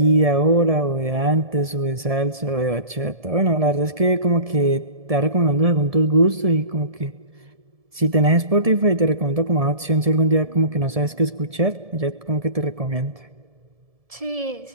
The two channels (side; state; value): left; late; 1.7 ms